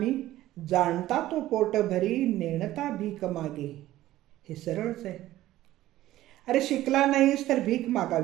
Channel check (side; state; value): left; quieter; 15.0 dB